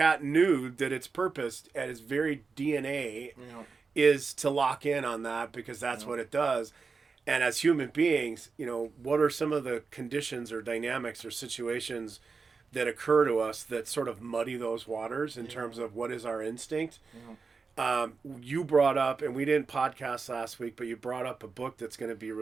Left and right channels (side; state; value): left; quieter; 4.7 dB